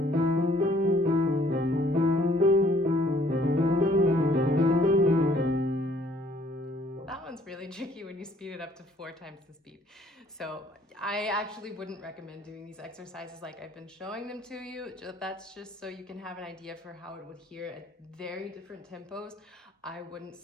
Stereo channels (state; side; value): normal; both; correlation 0.60